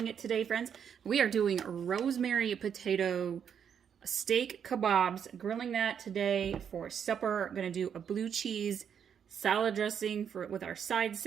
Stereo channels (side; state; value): left; quieter; 7.9 dB